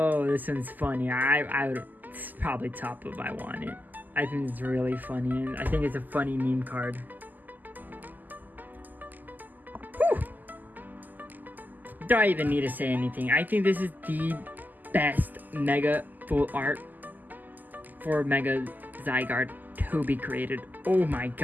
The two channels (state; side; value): late; left; 0.085 ms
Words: this one's funny. I would, it's probably top of I want it. I think it's really funny, and I think it's a funny meme card. Whew. Do I even need to say anything? I think this is the best Mega full art for Mega Zygarde to be created. Oh my